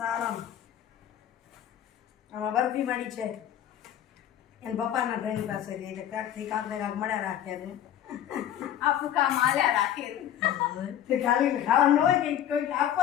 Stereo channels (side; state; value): right; quieter; 10.8 dB